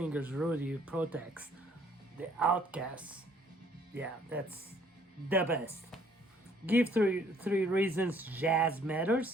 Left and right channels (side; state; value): both; normal; correlation 0.61